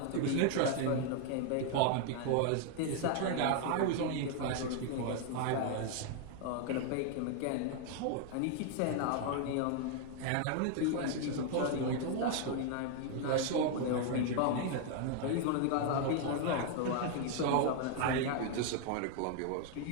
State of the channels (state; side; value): different; both; correlation 0.00